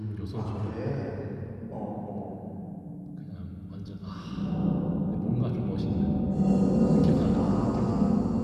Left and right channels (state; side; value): identical; both; correlation 1.00